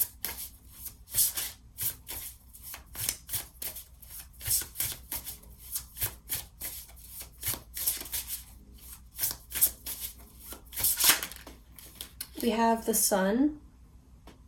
We have the Sun.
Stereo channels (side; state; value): both; identical; correlation 1.00